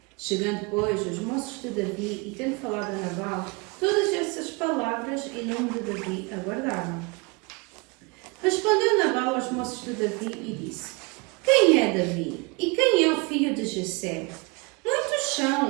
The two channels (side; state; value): left; quieter; 28.6 dB